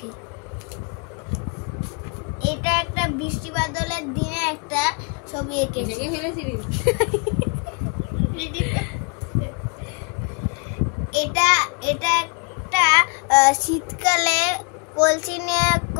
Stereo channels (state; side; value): quieter; right; 34.4 dB